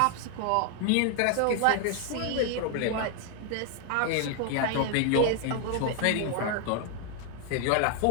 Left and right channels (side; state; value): both; different; correlation 0.00